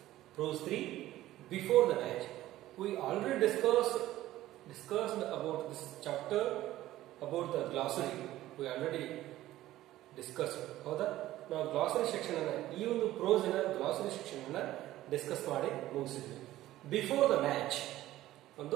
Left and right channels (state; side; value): quieter; left; 15.0 dB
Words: prose 3, before the match. We already discussed about this chapter, about the glossary. We already discussed. ಹೌದಾ? ನಾವು glossary section ಅನ್ನು ಈ ಒಂದು prose ನ glossary section ಅನ್ನು discuss ಮಾಡಿ ಮುಗಿಸಿದ್ವಿ. Before the match